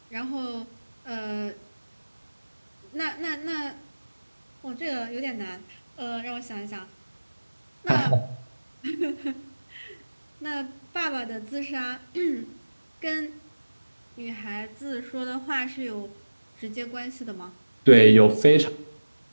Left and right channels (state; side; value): inverted; both; correlation -1.00